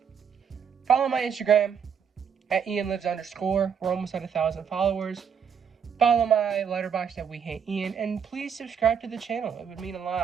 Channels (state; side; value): quieter; left; 7.3 dB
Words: Follow my Instagram at @IanLives_. We're almost at 1,000 followers. Follow my Letterboxd at wehateian, and please subscribe to the channel. It would mean a